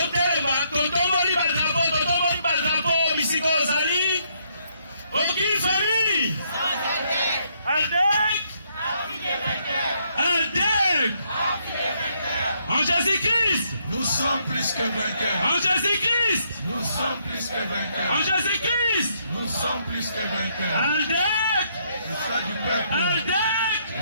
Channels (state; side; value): inverted; both; correlation -0.72